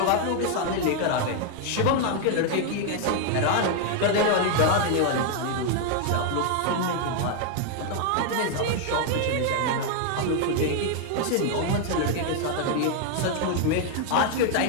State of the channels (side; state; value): both; different; correlation 0.01